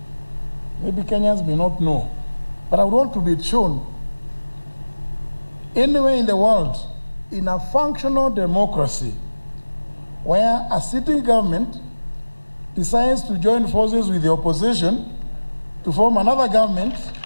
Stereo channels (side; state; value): both; inverted; correlation -1.00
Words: Maybe Kenyans may not know, but I would want to be shown anywhere in the world, in a functional democracy, where a sitting government decides to join forces with the opposition to form another government